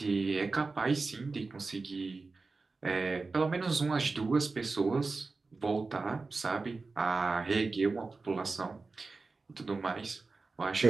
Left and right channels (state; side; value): quieter; left; 3.9 dB